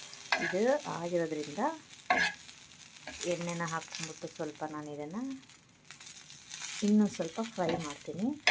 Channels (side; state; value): both; identical; correlation 1.00